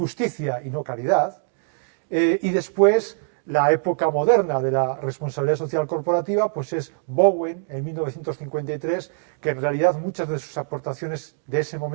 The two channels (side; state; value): left; silent; 63 dB below the other